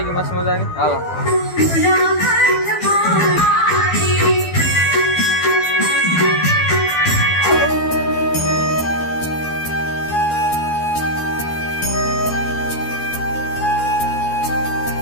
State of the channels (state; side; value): late; right; 12 ms